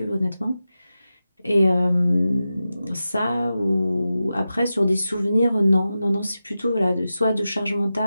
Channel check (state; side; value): inverted; both; correlation -0.92